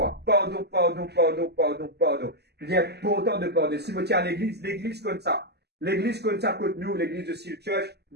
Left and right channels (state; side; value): late; left; 0.48 ms